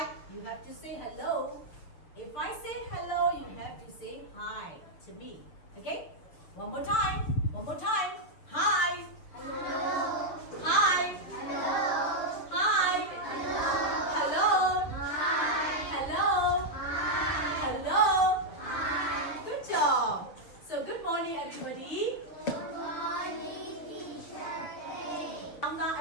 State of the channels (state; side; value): late; right; 6.7 ms